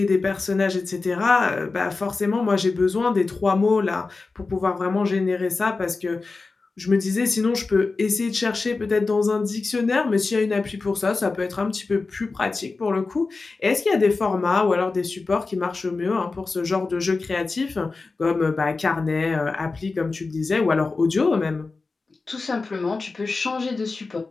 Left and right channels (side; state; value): right; quieter; 3.9 dB